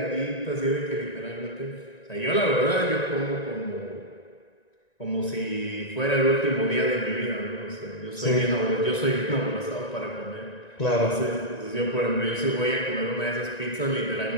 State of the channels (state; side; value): late; right; 1.9 ms